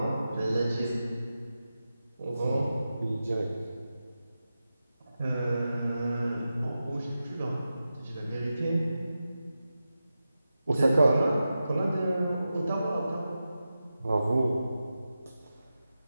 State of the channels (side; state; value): both; inverted; correlation -0.91